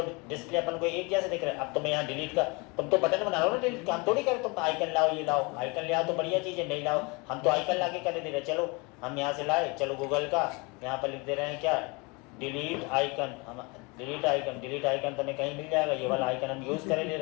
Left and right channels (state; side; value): quieter; right; 28.2 dB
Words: डिस्प्ले अपन को एक जैसे दिख रहा है। अब तुम्हें यहाँ डिलीट का, तुम तो बटन बना रहे हो ना डिलीट का, हम थोड़ी करें तुम आइकन लाओ, ये लाओ, आइकन ले आओ तो बढ़िया चीज़ है, नहीं लाओ हम तो आइकन ला के कर दे रहे। चलो हम यहाँ से लाए, चलो गूगल का यहाँ पर लिख दे रहे हैं क्या, डिलीट आइकन, हम डिलीट आइकन तुम्हें कहीं मिल जाएगा, ये वाला आइकन हम यूज़ करे ले